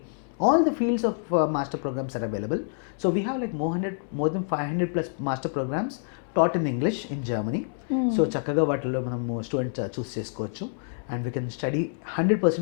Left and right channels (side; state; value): right; silent; 60 dB below the other